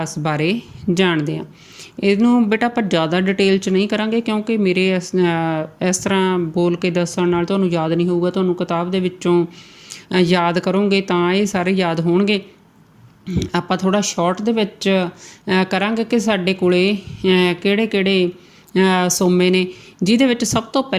ਬਾਰੇ ਜਾਣਦੇ ਹਾਂ। ਇਹਨੂੰ ਬੇਟਾ ਆਪਾਂ ਜ਼ਿਆਦਾ ਡਿਟੇਲ 'ਚ ਨਹੀਂ ਕਰਾਂਗੇ ਕਿਉਂਕਿ ਮੇਰੇ ਇਸ ਤਰ੍ਹਾਂ ਬੋਲ ਕੇ ਦੱਸਣ ਨਾਲ ਤੁਹਾਨੂੰ ਯਾਦ ਨਹੀਂ ਹੋਊਗਾ। ਤੁਹਾਨੂੰ ਕਿਤਾਬ ਦੇ ਵਿੱਚੋਂ ਯਾਦ ਕਰੋਗੇ ਤਾਂ ਇਹ ਸਾਰੇ ਯਾਦ ਹੋਣਗੇ। ਆਪਾਂ ਥੋੜ੍ਹਾ ਸ਼ਾਰਟ ਦੇ ਵਿੱਚ ਕਰਾਂਗੇ ਕਿ ਸਾਡੇ ਕੋਲੇ ਕਿਹੜੇ ਸੋਮੇ ਨੇ, ਜਿਹਦੇ ਵਿੱਚ ਸਭ ਤੋਂ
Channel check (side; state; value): both; identical; correlation 1.00